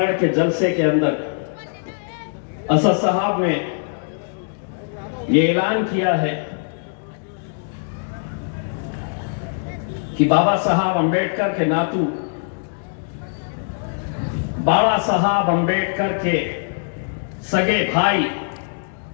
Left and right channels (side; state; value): right; silent; digital silence